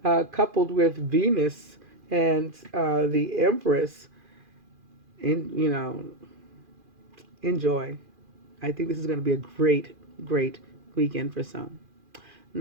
coupled with Venus and the Empress, enjoy. I think this is going to be a great, great weekend for some.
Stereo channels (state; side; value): late; left; 2.4 ms